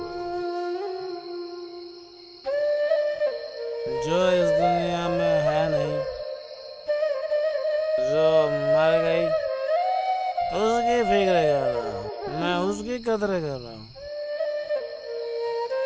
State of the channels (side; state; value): both; identical; correlation 1.00